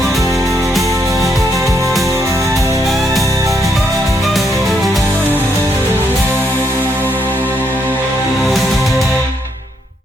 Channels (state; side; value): normal; both; correlation 0.75